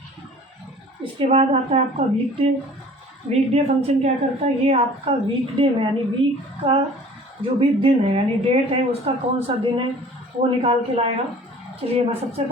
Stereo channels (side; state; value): both; normal; correlation 0.47